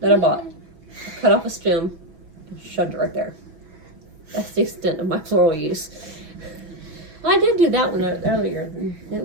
that I bought. I cut off a stem and shoved it right there. That's the extent of my floral use. Well, I did do that one earlier. It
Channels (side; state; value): left; late; 6.2 ms